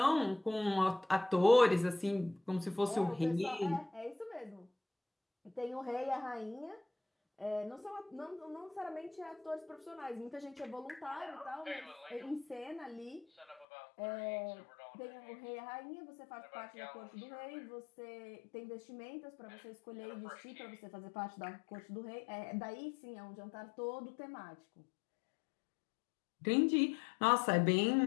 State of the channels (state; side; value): drops out; right; at 13.7 s